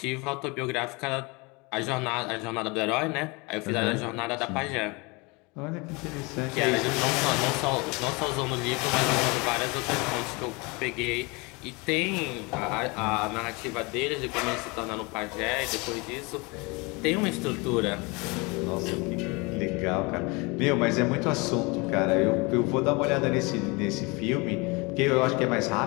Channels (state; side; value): quieter; right; 27.4 dB